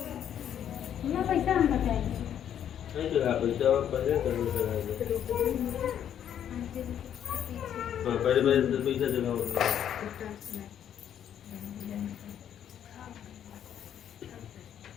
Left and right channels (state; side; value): quieter; right; 9.7 dB